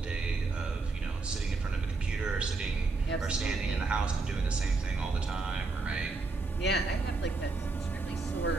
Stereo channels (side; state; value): left; quieter; 3.8 dB